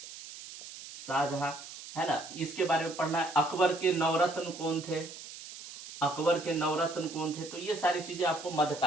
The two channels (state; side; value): noise; right; hiss, 13 dB below the sound